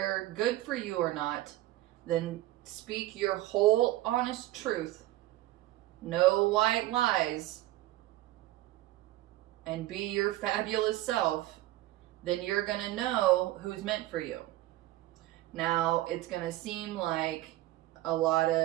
good for you or not, then speak your whole honest truth. No white lies. And be your fabulous self. Then you're going to know who's meant for you. Now, it's going to seem like a lot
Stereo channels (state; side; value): quieter; left; 16.4 dB